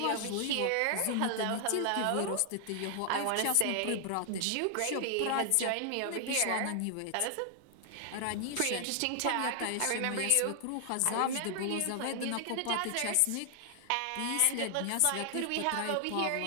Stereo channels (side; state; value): both; different; correlation 0.00